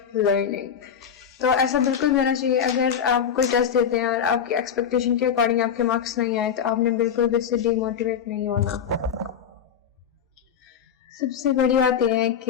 learning. تو ایسا بالکل ہونا چاہیے. اگر آپ کوئی ٹیسٹ دیتے ہیں اور آپ کی ایکسپیکٹیشن کے اکارڈنگ آپ کے مارکس نہیں آئے تو آپ نے بالکل بھی اس سے ڈی موٹیویٹ نہیں ہونا. سب سے بڑی بات یہ ہے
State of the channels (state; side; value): quieter; right; 7.8 dB